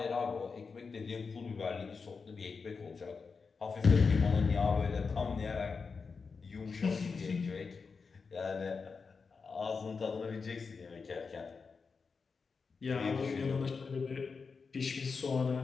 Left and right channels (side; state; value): right; quieter; 5.0 dB